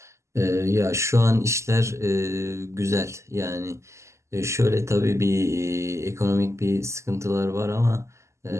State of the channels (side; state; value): left; late; 0.13 ms